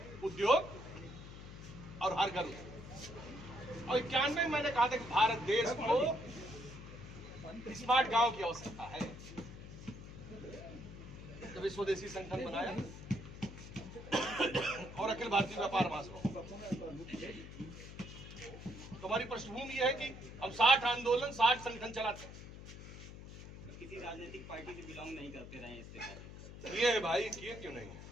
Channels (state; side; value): noise; left; hum, 13 dB below the sound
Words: उद्योग और हर घर उद्योग। और 91 में मैंने कहा था कि भारत देश को स्मार्ट गांव की आवश्यकता है। जब स्वदेशी संगठन बनाया और अखिल भारतीय व्यापार महासभा, तो हमारी पृष्ठभूमि यह है कि हम 60 आंदोलन, 60 संगठन चलाते हैं। किसी राजनीतिक पार्टी से बिलोंग नहीं करते रहे इससे किए है भाई, किए क्यों नहीं?